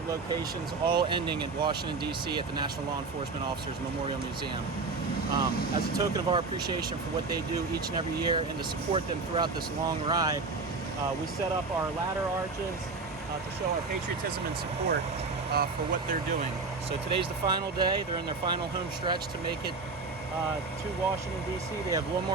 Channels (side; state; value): left; quieter; 4.0 dB